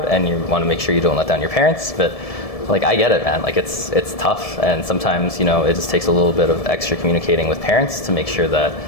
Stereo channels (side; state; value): right; late; 1.7 ms